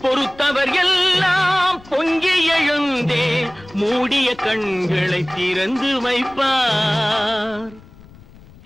பொறுத்தவர் எல்லாம் பொங்கி எழுந்தே மூடிய கண்களை திறந்து வைப்பார்.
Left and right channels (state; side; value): noise; left; rumble, 23 dB below the sound